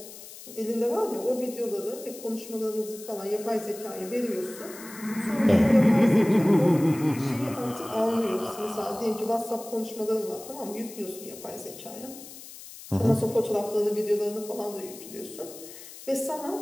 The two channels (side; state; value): left; noise; hiss, 15 dB below the sound